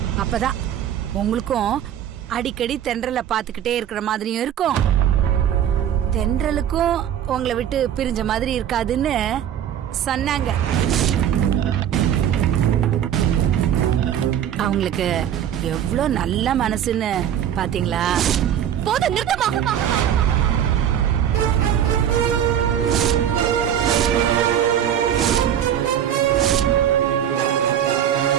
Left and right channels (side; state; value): left; quieter; 9.9 dB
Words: அப்பதான் உங்களுக்கும் அடிக்கடி தென்றலை பாத்துக்கிட்டே இருக்கிற மாதிரியும் இருக்கும், தென்றலுக்கும் உங்களை விட்டு பிரிஞ்ச மாதிரி இருக்காதுன்னு சொன்னாங்க. அவங்களுக்கு எவ்வளவு நல்ல மனசுன்னு பாத்தீங்களா? போதும், நிறுத்தமா.